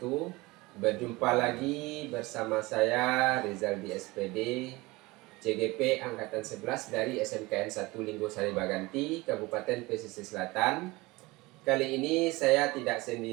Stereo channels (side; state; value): left; quieter; 22.1 dB